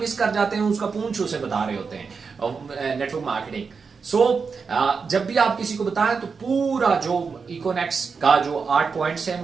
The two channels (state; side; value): quieter; left; 5.3 dB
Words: कर जाते हैं, उसका पूंछ उसे बता रहे होते हैं नेटवर्क मार्केटिंग। सो जब भी आप किसी को बताएं तो पूरा जो इकोनेक्स का जो 8 पॉइंट्स हैं